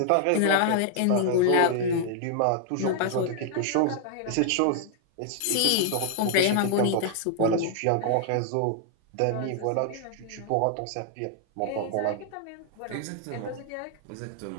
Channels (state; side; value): different; both; correlation 0.00